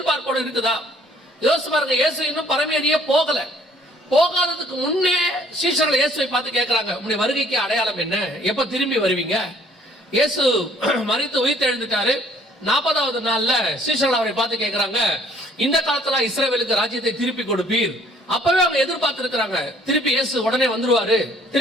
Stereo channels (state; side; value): normal; both; correlation 0.60